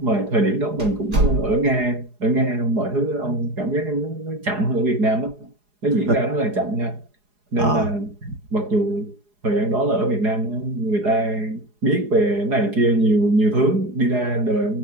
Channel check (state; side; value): late; left; 4.8 ms